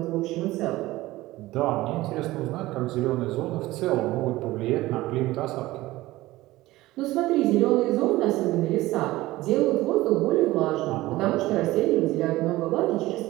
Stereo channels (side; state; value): left; quieter; 17.9 dB